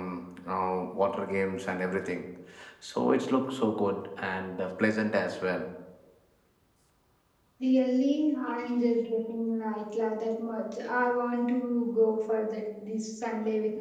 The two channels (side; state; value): both; identical; correlation 1.00